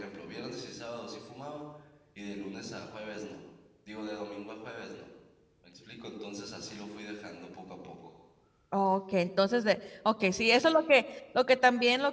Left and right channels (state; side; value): identical; both; correlation 1.00